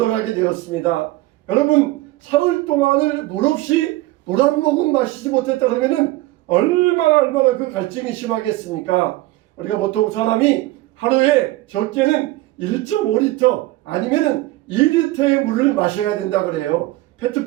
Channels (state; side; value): quieter; left; 18.1 dB